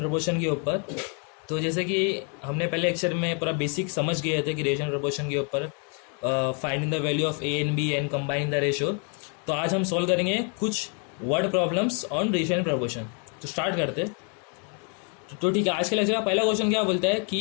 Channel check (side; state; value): right; quieter; 39.1 dB